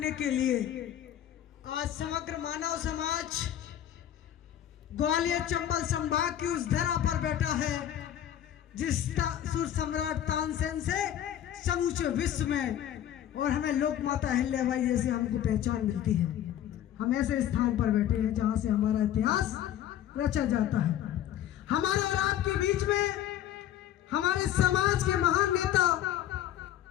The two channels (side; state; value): right; quieter; 11.3 dB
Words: के लिए आज समग्र मानव समाज ग्वालियर चंबल संभाग की उस धरा पर बैठा है जिस सुर सम्राट तानसेन से समूचे विश्व में और हमें लोक माता अहिल्याबाई जैसे हमको पहचान मिलती है। हम ऐसे स्थान पर बैठे हैं जहां से हमारा इतिहास रचा जाता है। हमारे और आपके बीच में हमारे समाज के महान नेता,